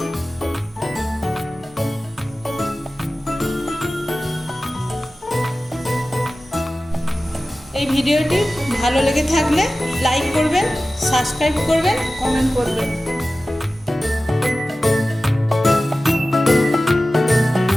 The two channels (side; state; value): both; normal; correlation 0.96